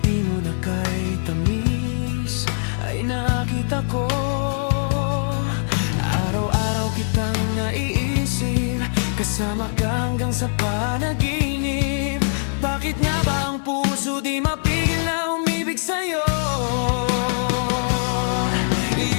mo na kay tamis ay nakita ko. Araw-araw kitang naiisip, kasama ka hanggang sa panaginip. Bakit nga ba ang puso di mapigil na umibig sa'yo?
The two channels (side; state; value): right; silent; digital silence